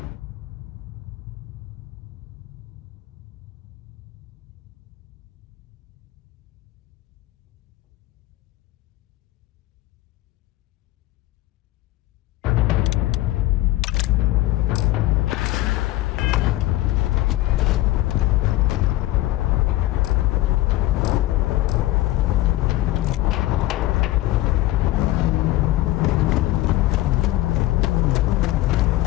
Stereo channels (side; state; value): right; quieter; 16.9 dB